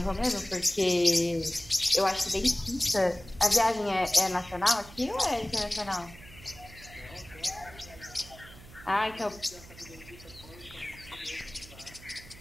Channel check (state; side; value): noise; right; hum, 19 dB below the sound